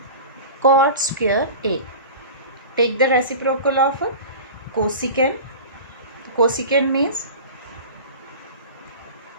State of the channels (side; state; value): both; inverted; correlation -0.34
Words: cot square A. Take the reciprocal of cosecant. Cosecant means